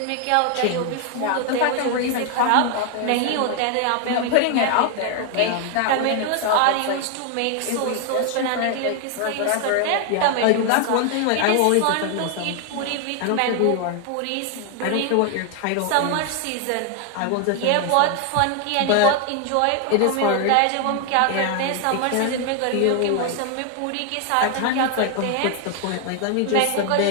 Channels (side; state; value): both; different; correlation 0.00